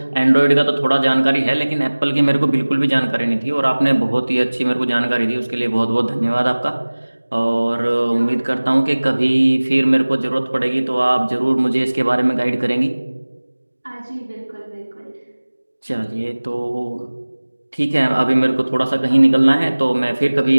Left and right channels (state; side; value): inverted; both; correlation -1.00